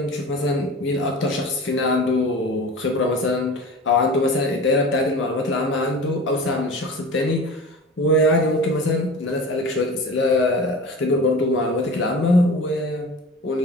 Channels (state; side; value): normal; both; correlation 0.36